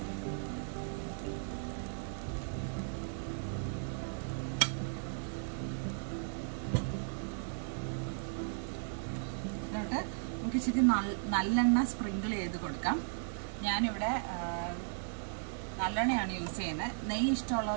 എന്നിട്ട് നമുക്ക് ഇച്ചിരി നല്ലെണ്ണ സ്പ്രിങ്കിൾ ചെയ്ത് കൊടുക്കാം. ഞാനിവിടെ നല്ലെണ്ണയാണ് യൂസ് ചെയ്യുന്നത്. നെയ്യ്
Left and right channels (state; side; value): silent; left; digital silence